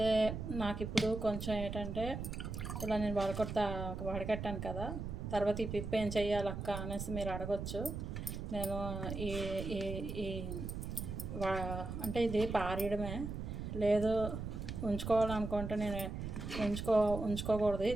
నాకు ఇప్పుడు కొంచెం ఏంటంటే ఇలా నేను వడకట్టాను కదా, తర్వాత ఈ పిప్పు ఏం చెయ్యాలక్క అనేసి మీరు అడగచ్చు. నేను ఈ ఈ అంటే ఇది పారేయడమే, లేదు ఉంచుకోవాలనుకుంటే నేను ఉంచుకోకూడదు,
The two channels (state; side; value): noise; right; rumble, 5 dB below the sound